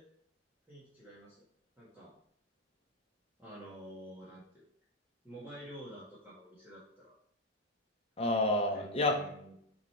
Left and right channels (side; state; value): both; normal; correlation 0.02